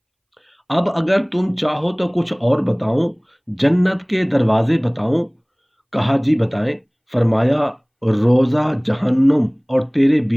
अब अगर तुम चाहो तो कुछ और बताऊं, जन्नत के दरवाजे बताऊं? कहा, जी बताएं। फरमाया, रोज़ा जहन्नुम और तेरे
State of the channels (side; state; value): both; identical; correlation 1.00